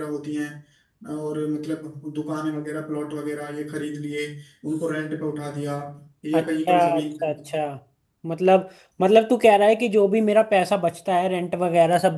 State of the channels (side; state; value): both; identical; correlation 1.00